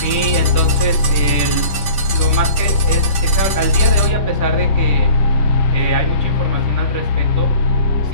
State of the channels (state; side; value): late; right; 10 ms